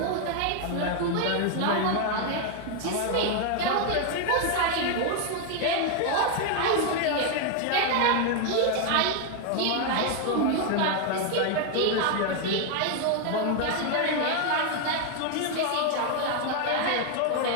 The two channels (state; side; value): different; both; correlation 0.00